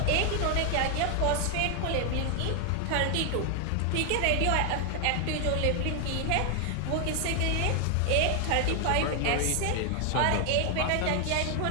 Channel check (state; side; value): different; both; correlation 0.00